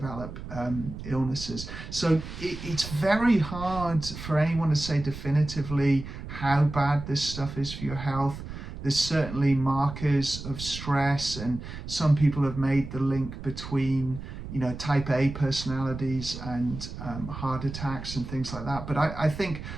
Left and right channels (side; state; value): right; noise; rumble, 10 dB below the sound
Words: illnesses. So it's very hard for anyone to say definitively how bad this stuff is for your health. There's certainly markers of stress, and some people have made the link between type A personalities and heart attacks and things like that. But I think